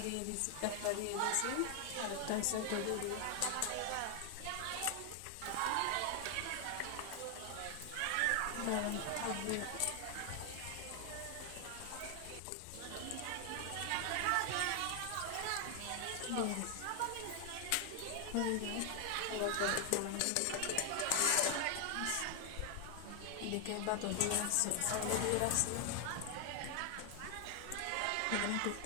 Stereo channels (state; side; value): different; both; correlation 0.00